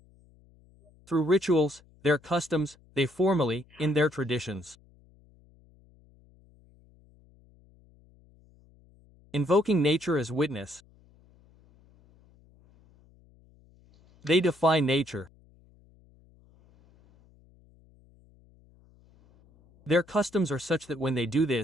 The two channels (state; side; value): noise; left; hum, 29 dB below the sound